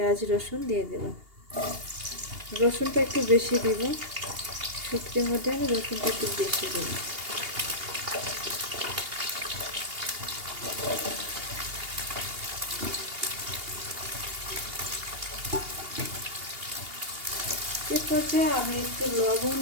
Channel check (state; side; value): late; left; 2.8 ms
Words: রসুন দিয়ে দেব, রসুনটা একটু বেশি দিব, শুটকির মধ্যে আমি রসুনটা একটু বেশি দেব। এরপর আমি একটু লবণ